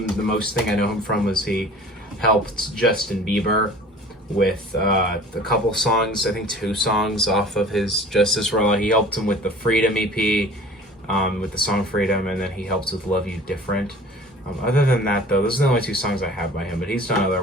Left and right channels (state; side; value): normal; both; correlation 0.45